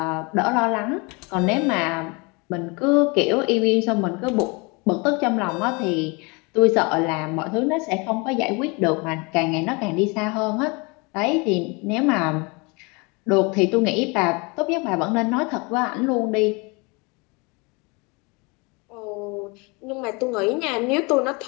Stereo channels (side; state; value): right; quieter; 28.8 dB